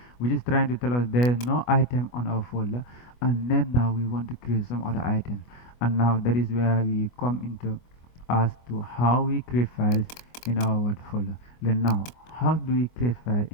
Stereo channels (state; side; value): late; right; 24 ms